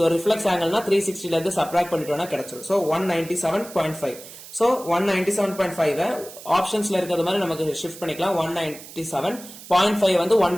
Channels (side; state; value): right; noise; hiss, 16 dB below the sound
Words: ரிஃப்ளெக்ஸ் ஆங்கிள்னா 360ல இருந்து சப்ராக்ட் பண்ணிட்டோம்னா கிடைச்சிடும். சோ 197.5. சோ 197.5 ஆப்ஷன்ஸ்ல இருக்கிறது மாதிரி நமக்கு ஷிஃப்ட் பண்ணிக்கலாம். 197.5 வந்து